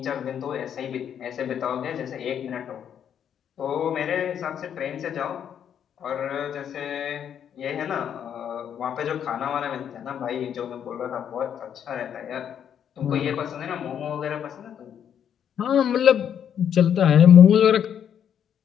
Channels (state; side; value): quieter; right; 8.8 dB